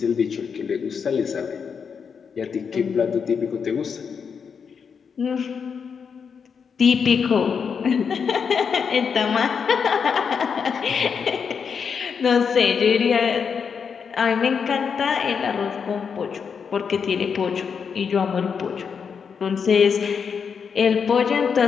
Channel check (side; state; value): right; quieter; 6.4 dB